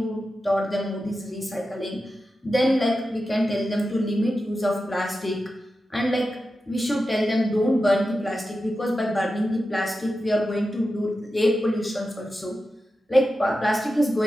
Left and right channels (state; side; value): normal; both; correlation 0.91